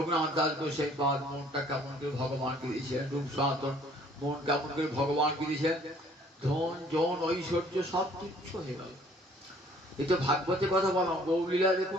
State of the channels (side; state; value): both; normal; correlation 0.58